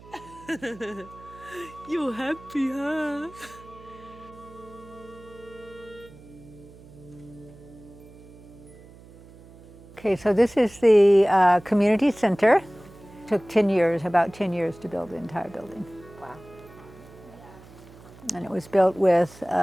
You happy, huh? Okay, so this is the community center. Took 10 years, about 10 years to build the entire building. Wow. And it was built with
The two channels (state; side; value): noise; right; hum, 21 dB below the sound